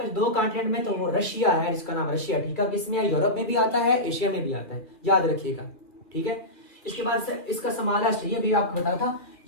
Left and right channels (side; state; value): right; late; 2.6 ms